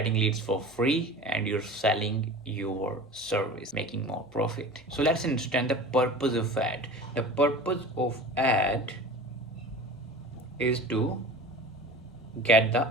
leads for free and you're selling your service, making more profit. So let's understand the purpose of ad. The purpose of ad is to get the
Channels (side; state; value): both; normal; correlation 0.37